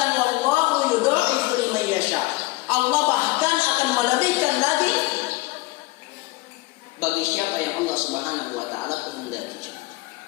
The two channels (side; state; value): right; quieter; 20.8 dB